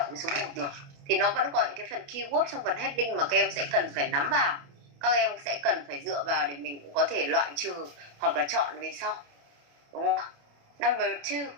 cái số 1 được. Thì nó vẫn có những cái phần keyword trong phần heading mà các em sẽ cần phải nắm vào, các em sẽ cần phải dựa vào để mình cũng có thể loại trừ hoặc là chọn về sau, đúng không? Number 2.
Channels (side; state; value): left; late; 28 ms